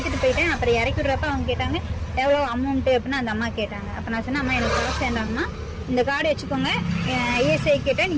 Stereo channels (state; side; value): identical; both; correlation 1.00